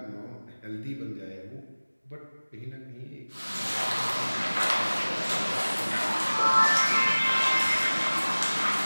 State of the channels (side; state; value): both; inverted; correlation -1.00